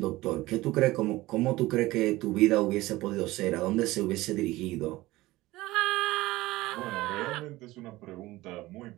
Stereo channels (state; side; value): quieter; left; 18.6 dB